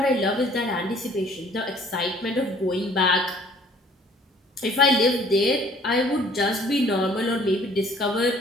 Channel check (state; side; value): normal; both; correlation 0.56